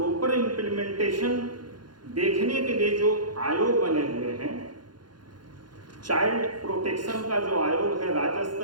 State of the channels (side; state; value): left; late; 0.71 ms